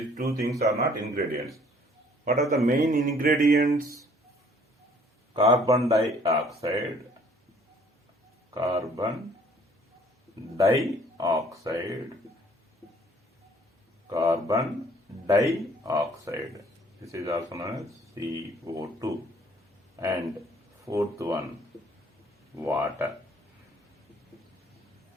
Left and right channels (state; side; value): normal; both; correlation 0.58